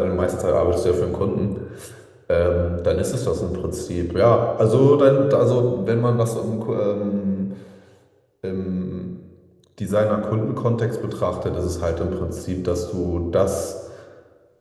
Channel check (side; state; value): both; identical; correlation 1.00